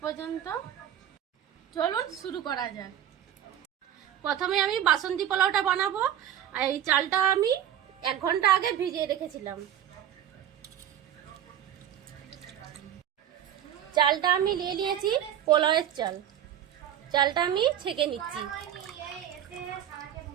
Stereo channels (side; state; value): left; quieter; 10.4 dB